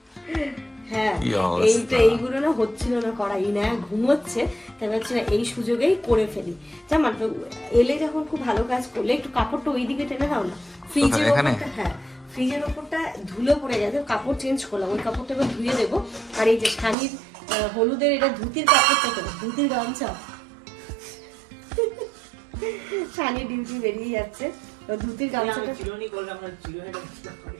হ্যাঁ, কি অবস্থা। এইগুলো না হচ্ছিল না করা, না ঘুমোচ্ছে, তাই ভাবছি না এই সুযোগেই করে ফেলি। জামান এলে যখন খুব ভালো কাজ করলে একটু কাপড়টা ওইদিকে টেনে দাও না, ফ্রিজের ওপরটা। হ্যাঁ, ফ্রিজের ওপরটা ধুলো পড়ে গেছে, কাপড় চেঞ্জ করলাম, ওই কাপড়টা এবার ধুয়ে দেবো। আর এই যে শানির হলুদের এটা ধুতির কাপড়টা, তো ধুতির গামছা, শানির ডিউটি বেরিয়ে যাচ্ছে, তো ধুতির গামছাটা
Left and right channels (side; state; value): left; drops out; at 16.9 s